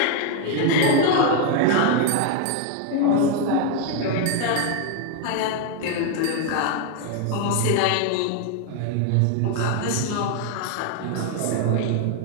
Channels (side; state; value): both; different; correlation 0.01